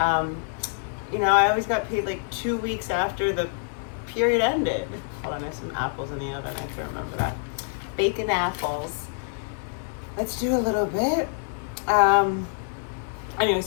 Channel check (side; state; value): right; silent; 60 dB below the other